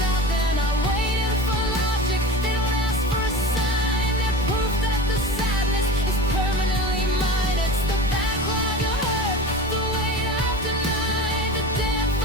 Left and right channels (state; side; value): normal; both; correlation 0.32